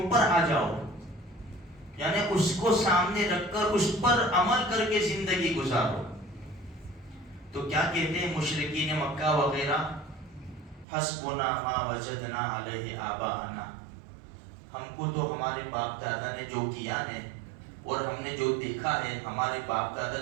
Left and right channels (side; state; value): left; drops out; at 10.9 s